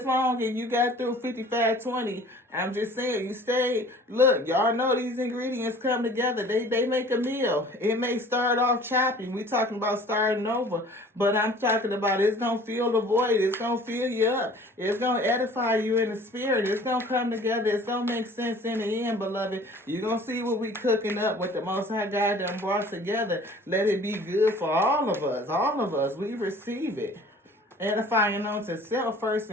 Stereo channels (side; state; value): both; normal; correlation 0.49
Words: long and you got through 55-20, I'm just saying, you stayed. Look, y'all know these ingredients come together. They make a meal. It may start off choppy. We talking about starting over. But I'm talking about it's going to fill the void. It's going to fill you up. It's going to edify you in the spirit. It's going to come together. It's going to make sense in the end, beloved. You're going to see what we cooking up, what the Most High God done brought together. Let it be good for all of us. All of us. We receive it. Edifying unto self first